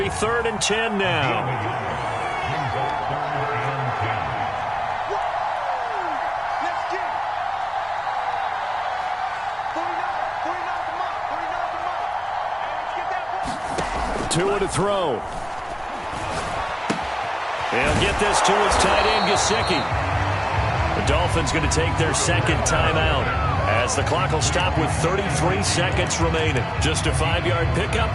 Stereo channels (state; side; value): identical; both; correlation 1.00